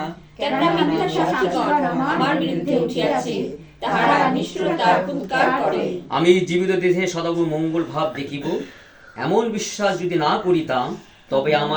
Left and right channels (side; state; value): both; identical; correlation 1.00